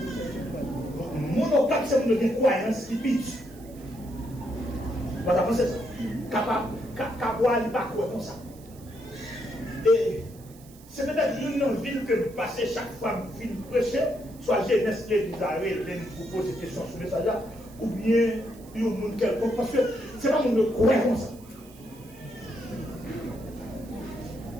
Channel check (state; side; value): noise; right; hiss, 24 dB below the sound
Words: parce que nous avons une croyance qui pitch. Vous avez pensé ça? Capable de pas croire comme ça. Et c'est peut-être une ville que nous passons chaque fois que nous finissons prêcher, soit jeunesse et Israël, nous posons des questions sur le message là, ou bien il y a un monde quelconque, parce que c'est pas monde qui croit comme ça.